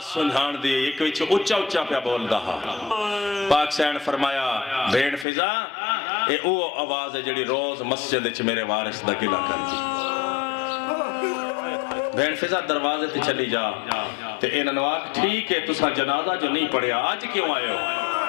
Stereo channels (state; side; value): drops out; right; at 5.2 s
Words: سنجھان دی ایک وچ اچھا اچھا پیا بول دہا پاک سین فرمایا بھیڑ فضا اے او آواز ہے جڑی روز مسجد وچ میرے وارث دا گلہ کر دی بھیڑ فضا دروازے تے چلی جا تے انہاں نوں آکھ ٹھیک ہے تساں جنازہ جو نہیں پڑھیا آج کیوں آئے ہو